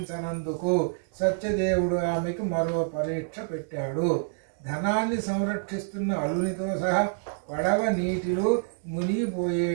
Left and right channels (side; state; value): left; silent; digital silence